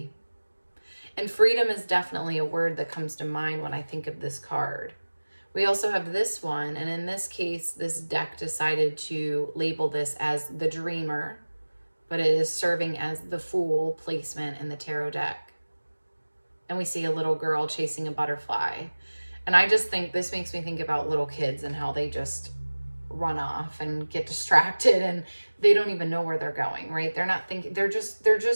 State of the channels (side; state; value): both; inverted; correlation -1.00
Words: And freedom is definitely a word that comes to mind when I think of this card. We also have this one, and in this case, this deck decided to label this as the Dreamer, but it is serving as the Fool placement in the tarot deck. And we see a little girl chasing a butterfly. And I just think this makes me think about little kids and how they just run off and get distracted and they don't even know where they're going, right? They're not thinking, they're